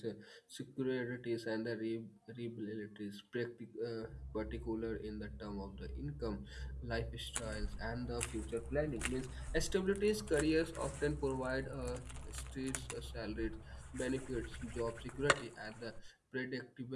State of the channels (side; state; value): both; identical; correlation 1.00